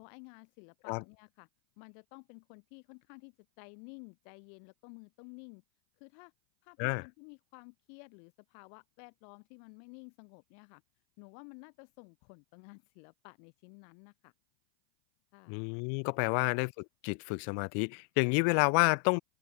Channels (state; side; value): silent; right; 53 dB below the other